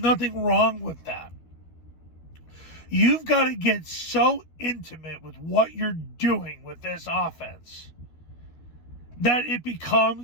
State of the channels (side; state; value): right; late; 12 ms